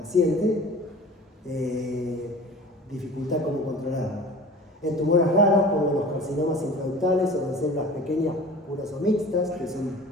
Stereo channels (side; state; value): both; normal; correlation 0.41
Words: dificultad cómo controlarlo. En tumores raros, como los carcinomas intraductales o en células pequeñas, puras o mixtas, que son